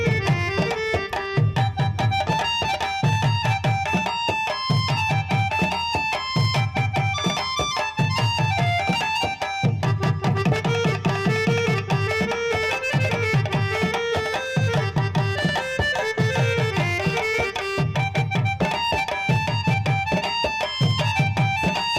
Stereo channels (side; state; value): both; identical; correlation 1.00